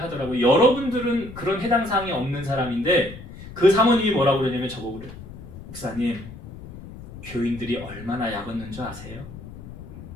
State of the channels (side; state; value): left; noise; rumble, 14 dB below the sound